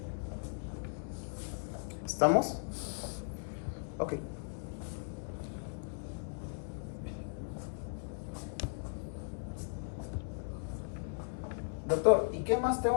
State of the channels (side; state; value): right; silent; digital silence